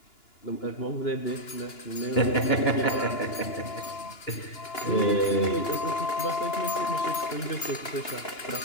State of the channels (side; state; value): right; late; 2.9 ms